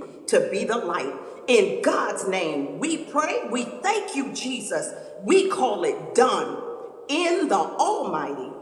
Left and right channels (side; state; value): both; identical; correlation 1.00